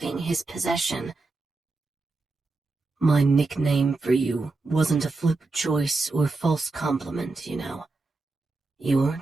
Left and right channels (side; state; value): left; quieter; 3.5 dB